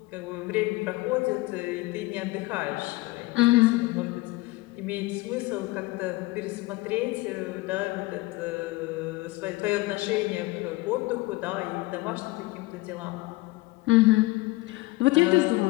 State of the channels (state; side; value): quieter; right; 21.1 dB